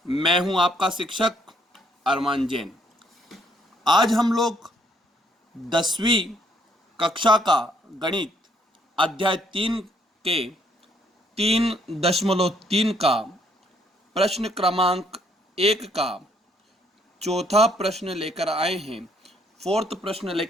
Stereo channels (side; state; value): both; normal; correlation 0.68